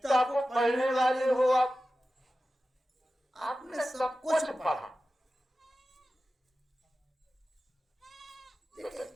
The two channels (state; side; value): normal; both; correlation 0.94